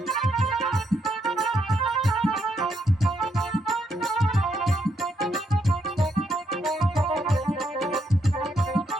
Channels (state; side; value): normal; both; correlation 0.77